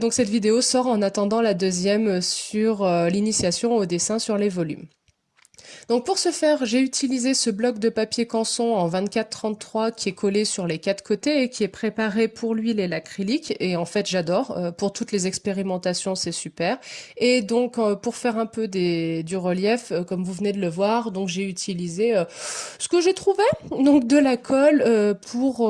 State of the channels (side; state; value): both; identical; correlation 1.00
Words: cette vidéo sort en attendant la deuxième sur l'initiation au dessin sur les volumes. Donc pour ce faire, j'ai utilisé ce bloc de papier canson en 24-33 qui est collé sur les quatre côtés et qui est préparé pour l'huile et l'acrylique. Et en fait, j'adore. Pour toutes les expérimentations, c'est super. Et donc pour faire un peu du relief, comme vous venez de le voir, donc j'ai utilisé ce que j'ai trouvé, donc de la colle